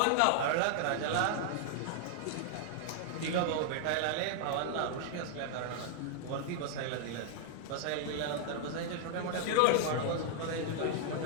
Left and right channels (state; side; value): different; both; correlation 0.00